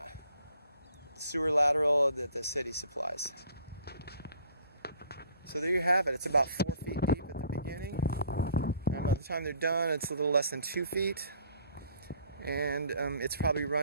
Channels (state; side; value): inverted; both; correlation -0.57